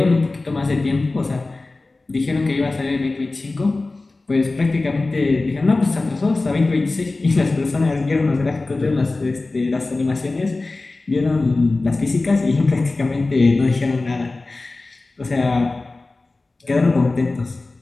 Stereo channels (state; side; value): quieter; right; 3.3 dB